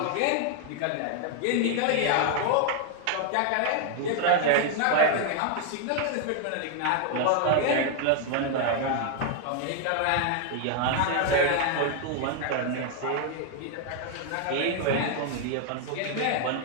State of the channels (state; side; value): different; both; correlation 0.00